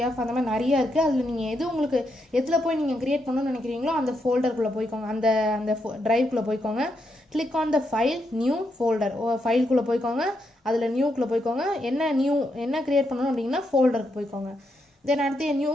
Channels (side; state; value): both; normal; correlation 0.81